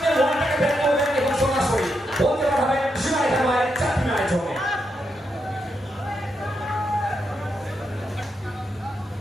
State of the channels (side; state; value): both; normal; correlation 0.83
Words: ওয়ানটাকে ব্যাট করবেন এবং সরাসরি বলতে পারবেন সীমায় খেলায় 4 রানের জন্য